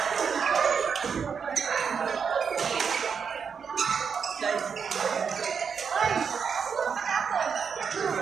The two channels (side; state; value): left; quieter; 6.4 dB